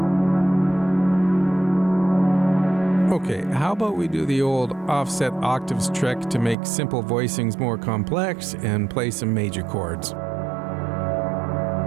Okay, how about we do the old offset octaves trick to make simple voicings more complex and play some major chords.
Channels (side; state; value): left; drops out; at 6.6 s